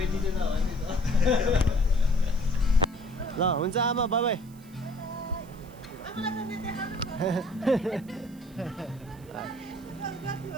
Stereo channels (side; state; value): right; noise; hiss, 26 dB below the sound